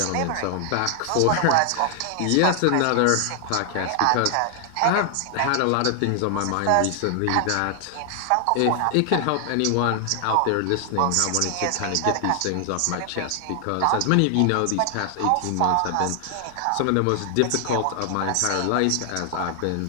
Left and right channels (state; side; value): different; both; correlation 0.00